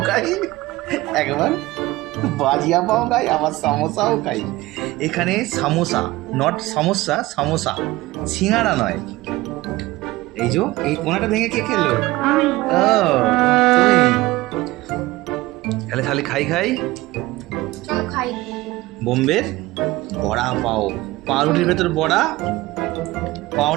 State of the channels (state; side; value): quieter; left; 19.1 dB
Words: খাই, একবার বাজিয়া পাও খাই, আবার সামোসাও খাই। এখানে সামোসা, নট সমস্যা, সামোসা, সিঙ্গারা নয়। এই যে এই কোনাটা ভেঙে কে খেলো? ও তুমি। তাহলে খালি খাই খাই। চলো খাই। বোম্বের বড়া পাও, পাউরুটির ভেতর বড়া,